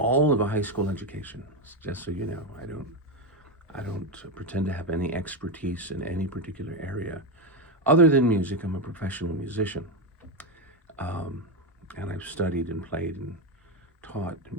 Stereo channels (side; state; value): both; normal; correlation 0.10